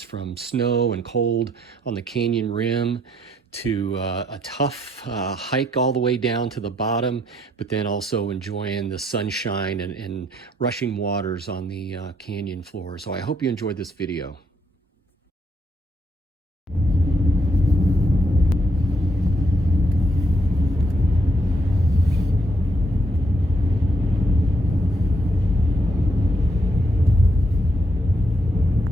from snow and cold on the canyon rim to a tough hike all the way down to the bottom, but then also enjoying the sunshine and rushing waters on the canyon floor. So I hope you enjoyed this video.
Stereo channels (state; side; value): normal; both; correlation 0.73